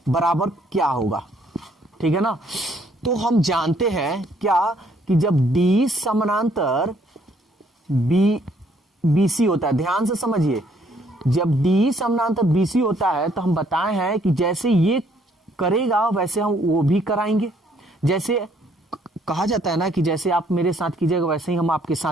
बराबर क्या होगा, ठीक है ना। तो हम जानते हैं क्या कि जब D समानांतर BC होता है, ध्यान से समझिए, जब D समानांतर BC होता है तो हम बताए हैं कि जैसे ये करेगा वैसे हम वो भी कराएंगे। जैसे कहा जाता है ना कि जैसे आप मेरे साथ कीजिएगा वैसे ही हम आपके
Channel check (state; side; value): normal; both; correlation 0.66